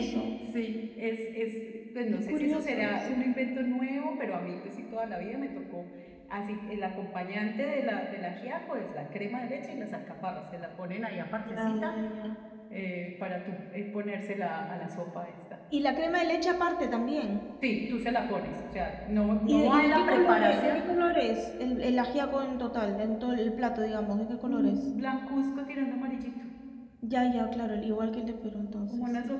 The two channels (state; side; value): identical; both; correlation 1.00